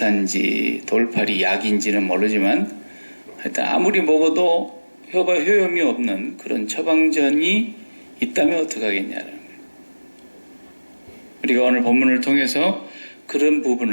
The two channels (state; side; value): inverted; both; correlation -1.00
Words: 돌팔이 약인지는 모르지만 하여튼 아무리 먹어도 효험이 없는 그런 처방전이 있다면 어떡하겠냐는 거예요. 우리가 오늘 본문을 통해서 그런